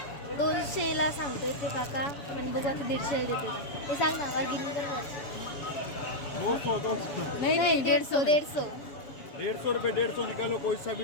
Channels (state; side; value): late; right; 7.1 ms